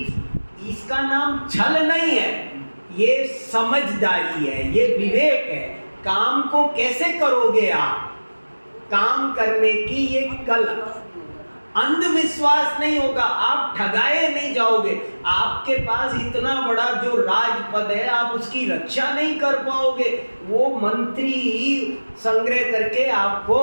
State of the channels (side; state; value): both; inverted; correlation -1.00